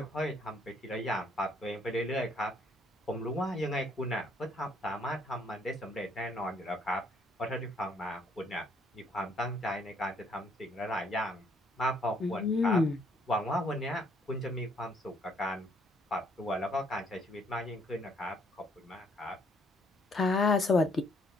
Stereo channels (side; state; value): both; normal; correlation 0.67